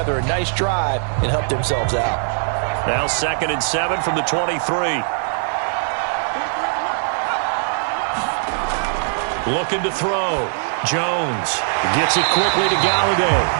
a nice drive and help themselves out. Now 2nd and 7 from the 23. Looking to throw. Jones gets it quickly to Galladay.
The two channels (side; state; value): left; silent; 66 dB below the other